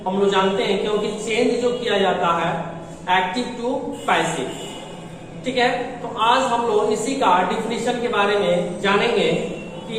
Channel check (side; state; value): both; identical; correlation 1.00